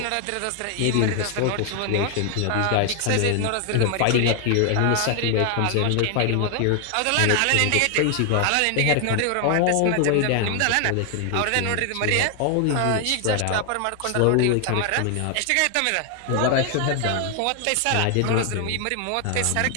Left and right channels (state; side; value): different; both; correlation 0.00